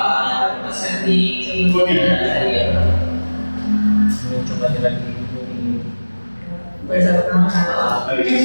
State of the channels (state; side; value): inverted; both; correlation -1.00